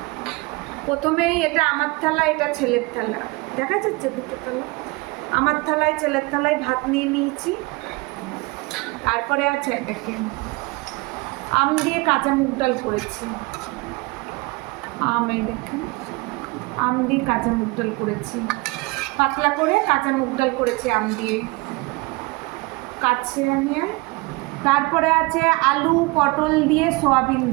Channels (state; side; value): quieter; left; 25.1 dB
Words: প্রথমেই এটা আমার থালা, এটা ছেলের থালা, দেখা যাচ্ছে দুটো থালা। আমার থালায় ছেলের থালায় ভাত নিয়ে নিয়েছি। তারপরে আছে দেখেন, আম দিয়ে কাঁচা মুগ ডাল করেছি। এই দেখেন, আম দিয়ে কাঁচা মুগ ডাল করেছি, পাতলা করে কাঁচা মুগ ডাল করেছি আম দিয়ে কাছে নিয়ে। তারপরে আছে আলু পটল দিয়ে সয়াবিন